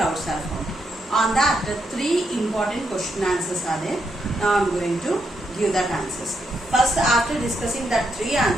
are formed. On that, three important question answers are there. Now I am going to give that answers. First, after discussing that three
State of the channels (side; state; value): both; normal; correlation 0.80